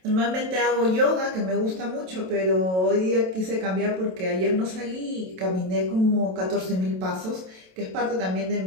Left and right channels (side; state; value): left; late; 27 ms